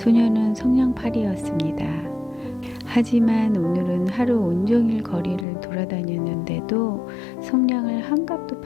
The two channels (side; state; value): right; drops out; at 5.5 s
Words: 성냥팔이였습니다. 하지만 오늘은 하루 온종일 거리를 돌아다녔는데도 성냥을 한 값도